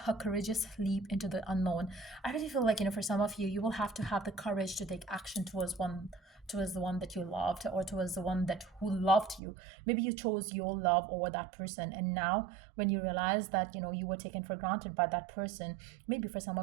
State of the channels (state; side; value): drops out; left; at 9.4 s